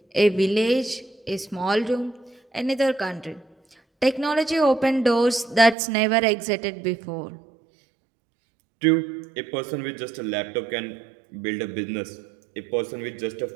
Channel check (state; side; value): drops out; left; at 5.8 s